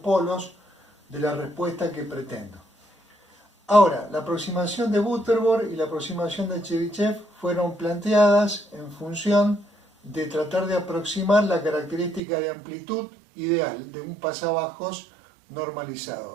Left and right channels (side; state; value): left; drops out; at 12.2 s